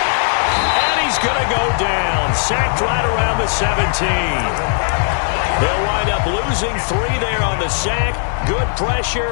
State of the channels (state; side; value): silent; right; 63 dB below the other